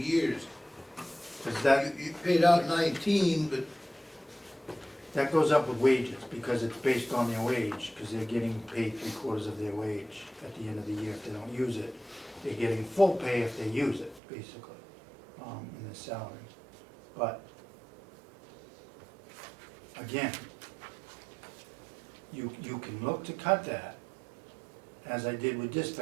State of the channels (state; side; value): drops out; left; at 14.2 s